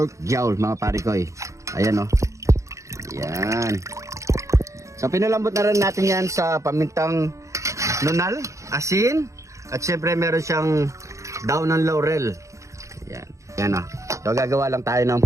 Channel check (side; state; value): left; late; 0.15 ms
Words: jowl mga pare ko eh. Ayan o. Yan. So pinalambot na rin natin yan sa pamintang nunal, asin, at syempre meron siyang daon ng laurel. Yan. Yan o. So gagawa lang tayo ng